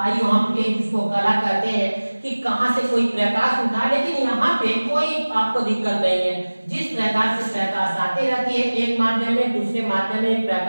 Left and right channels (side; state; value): both; inverted; correlation -1.00